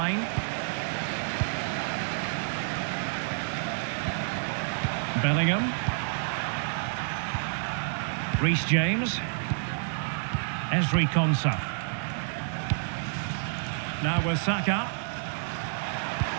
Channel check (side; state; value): left; silent; 58 dB below the other